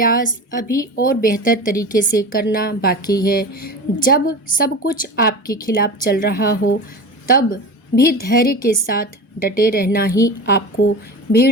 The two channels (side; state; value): both; normal; correlation 0.30